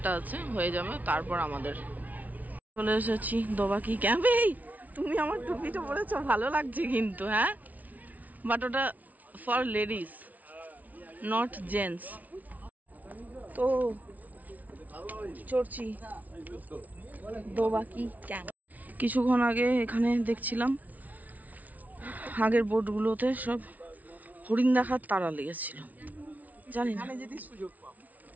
আছে হয়ে যাবে, তারপর আমাদের চলে এসেছি দোবাকি ক্যাম্পে। তুমি আমার টুপিটা পরেছো, ভালো লাগছে কিন্তু, হ্যাঁ, বাট ওটা ফর লেডিস নট জেন্টস। তো চড়ছি দোবাকি ক্যাম্প। কিছুক্ষণ আগে এখানে দেখছিলাম আগের বোটগুলোতে সব হরিণ দেখার তারা লেগেছিল, জানি না,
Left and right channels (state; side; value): late; left; 0.074 ms